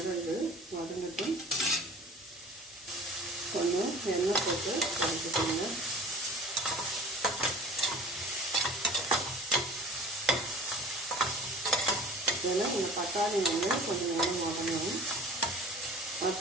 இது வதங்கட்டும். கொஞ்சம் எண்ணெய் போட்டு வதக்கிக்கோங்க. ஏன்னா இந்த பட்டாணி வந்து கொஞ்சம் நேரம் வதங்கணும்.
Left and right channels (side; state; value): both; normal; correlation 0.43